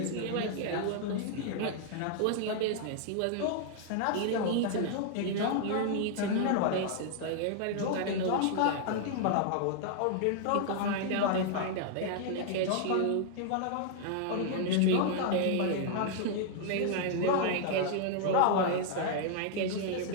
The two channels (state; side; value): different; both; correlation -0.01